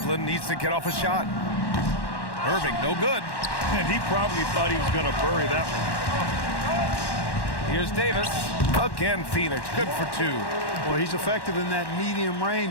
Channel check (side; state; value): right; late; 1.1 ms